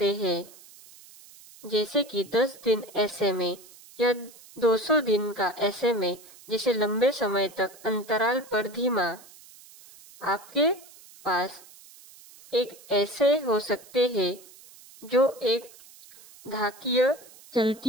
हैं, जैसे कि 10 दिन SMA या 200 दिन का SMA, जिसे लंबे समय तक अंतराल पर धीमा। आपके पास एक ऐसे हो सकते हैं जो एक घातीय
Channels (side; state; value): right; noise; hiss, 22 dB below the sound